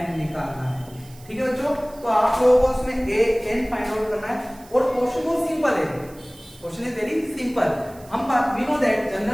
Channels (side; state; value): right; noise; hiss, 23 dB below the sound